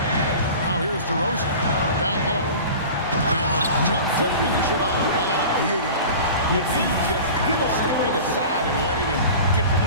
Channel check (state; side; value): inverted; both; correlation -0.37